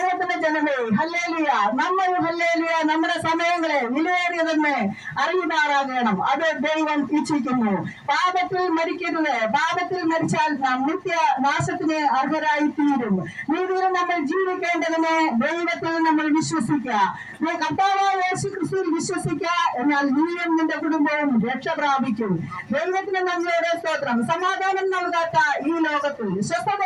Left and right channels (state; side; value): identical; both; correlation 1.00